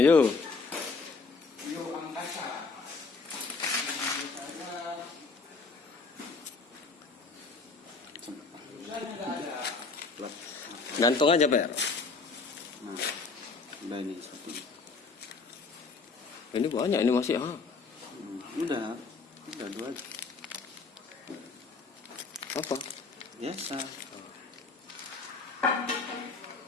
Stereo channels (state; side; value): quieter; right; 4.3 dB